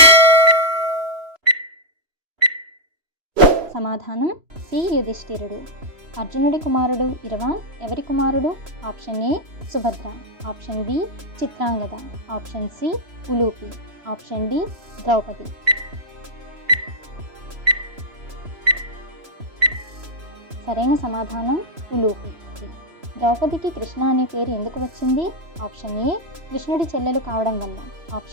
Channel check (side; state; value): left; late; 3.0 ms